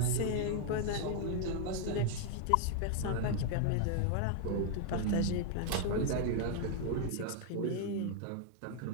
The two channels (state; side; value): different; both; correlation 0.00